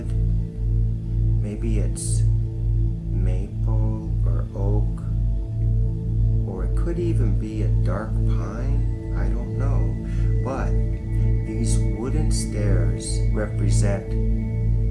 Maybe it's maple or oak, or it could even be a dark pine. I don't know. But these wooden stairs represent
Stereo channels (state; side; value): identical; both; correlation 1.00